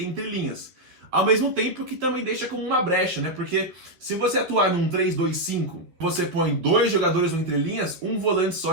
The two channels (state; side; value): late; left; 11 ms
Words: entrelinhas. Ao mesmo tempo que também deixa como uma brecha, né? Porque se você atuar num 3-2-5, você põe 2 jogadores no entrelinhas, um volante